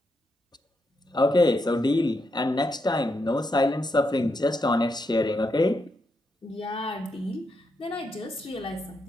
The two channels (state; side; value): normal; both; correlation 0.82